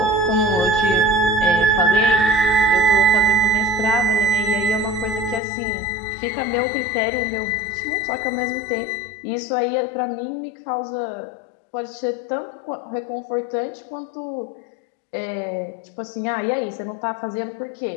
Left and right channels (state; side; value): drops out; right; at 5.4 s